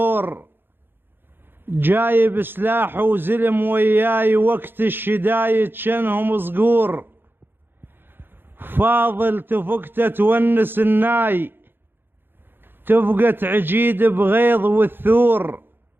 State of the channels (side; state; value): left; late; 0.10 ms